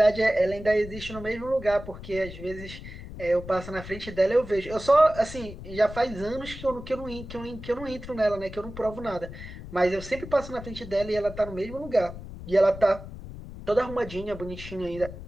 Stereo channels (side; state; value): left; noise; rumble, 12 dB below the sound